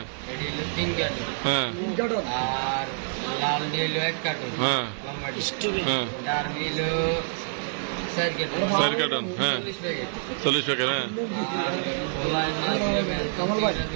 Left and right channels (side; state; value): left; silent; digital silence